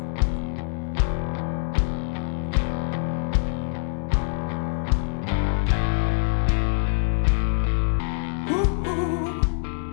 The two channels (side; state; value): right; silent; 59 dB below the other